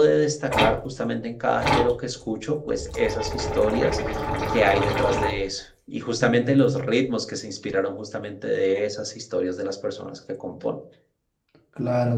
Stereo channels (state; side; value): identical; both; correlation 1.00